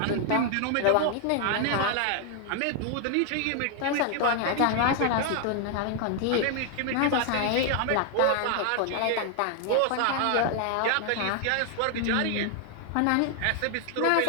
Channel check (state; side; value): different; both; correlation 0.00